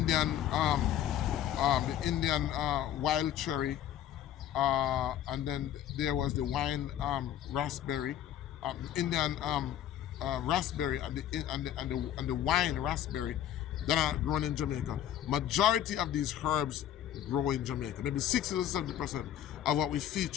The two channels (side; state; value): right; quieter; 11.1 dB